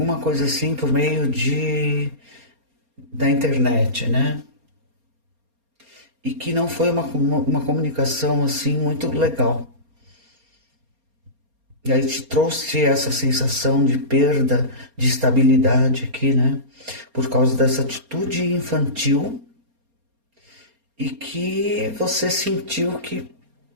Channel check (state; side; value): late; left; 4.3 ms